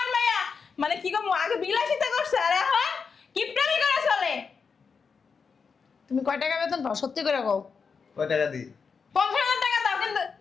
মাইয়া। মানে কি গো, আগে বিলাসিতা করছে আর এখন কিপটামি করে চলে। তুমি কয় টাকা বেতন পাও সত্যি করে কও কয় টাকা দিই? 50,000 টাকা দাও কিন্তু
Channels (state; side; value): quieter; right; 5.5 dB